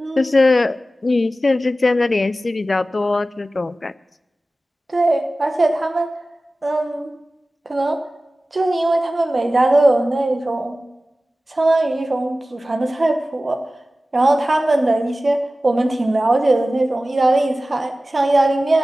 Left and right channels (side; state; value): both; normal; correlation 0.96